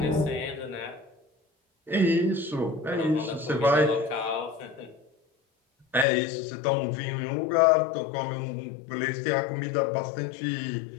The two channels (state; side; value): drops out; right; at 6.1 s